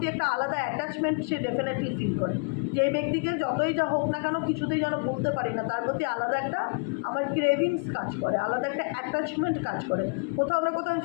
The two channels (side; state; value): right; quieter; 33.4 dB